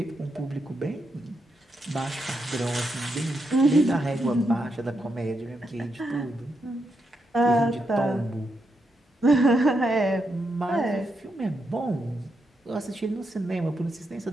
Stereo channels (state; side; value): normal; both; correlation 0.82